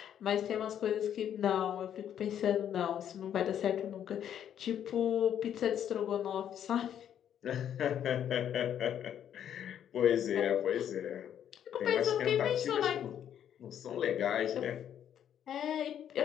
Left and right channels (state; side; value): quieter; right; 9.7 dB